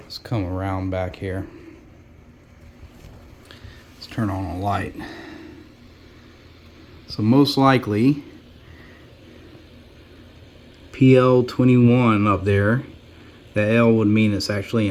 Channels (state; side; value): identical; both; correlation 1.00